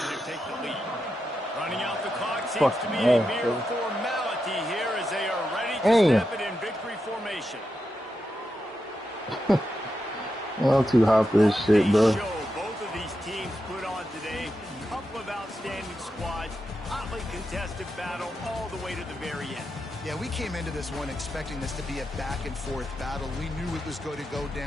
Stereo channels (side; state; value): both; normal; correlation 0.87